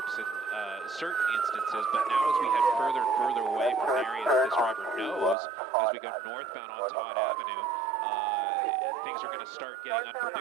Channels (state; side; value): drops out; left; at 5.4 s